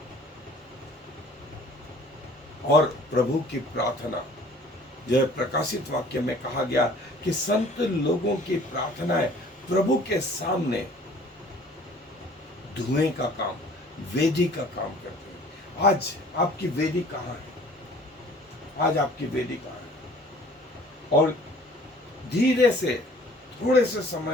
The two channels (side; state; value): both; normal; correlation 0.51